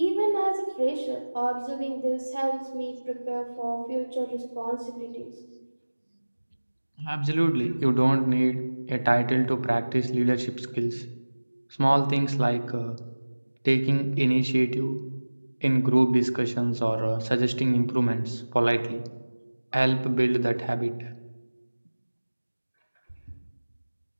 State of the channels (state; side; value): inverted; both; correlation -1.00